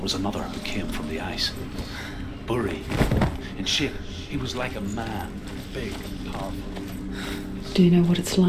was another who came from the ice. Buri. In shape, he was like a man, big and powerful. Do you know what it's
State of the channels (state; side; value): identical; both; correlation 1.00